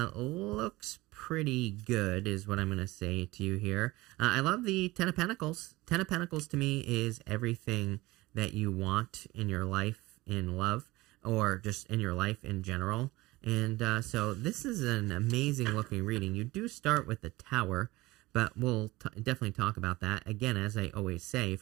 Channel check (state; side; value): quieter; left; 20.0 dB